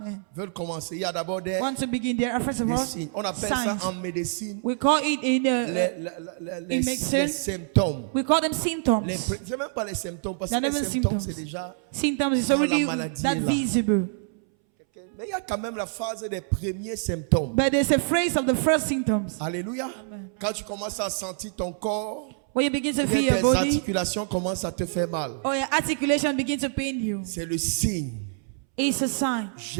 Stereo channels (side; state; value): left; silent; 61 dB below the other